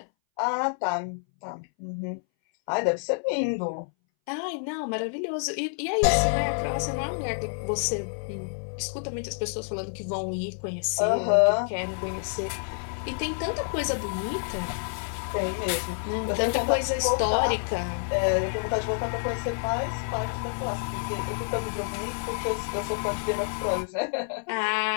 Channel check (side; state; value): right; silent; 59 dB below the other